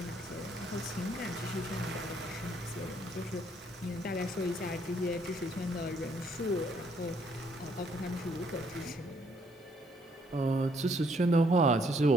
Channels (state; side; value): normal; both; correlation 0.68